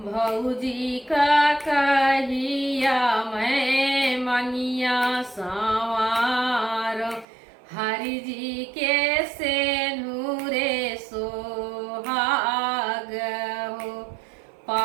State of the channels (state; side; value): drops out; left; at 7.2 s